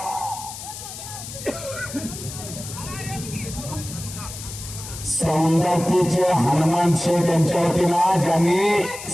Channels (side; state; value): left; noise; hiss, 11 dB below the sound